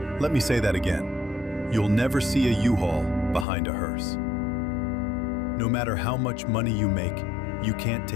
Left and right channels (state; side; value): drops out; right; at 3.5 s